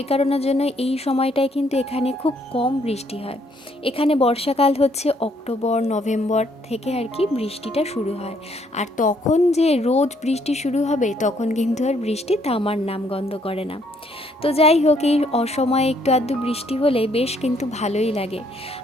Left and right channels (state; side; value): normal; both; correlation 0.68